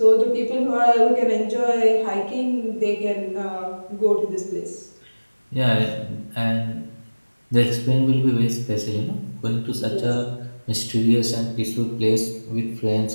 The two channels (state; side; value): inverted; both; correlation -1.00